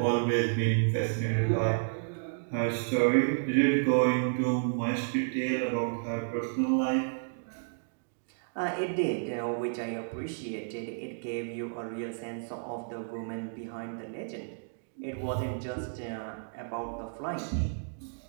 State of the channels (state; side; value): silent; left; digital silence